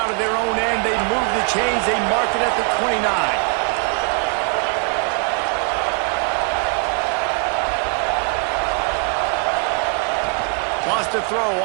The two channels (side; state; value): left; quieter; 37.8 dB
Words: of their own end. They move the chains. They mark it at the 29. Lost a throw